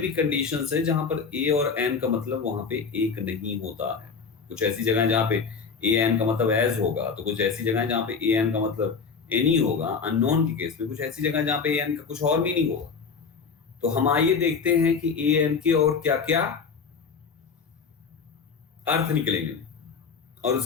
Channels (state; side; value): quieter; right; 5.5 dB